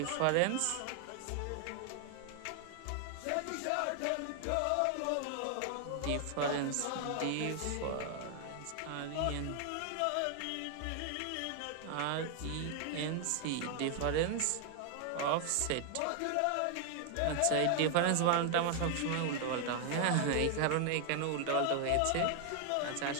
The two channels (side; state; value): both; different; correlation 0.00